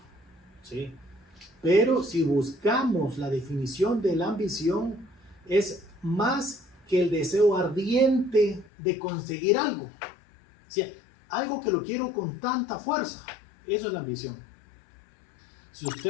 ¿Sí? Pero si buscamos la definición de la ambición, es más que el deseo ardiente de conseguir algo. O sea, algo que lo quiero con tanta fuerza. Eso es la ambición. Si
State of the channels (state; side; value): drops out; right; at 8.7 s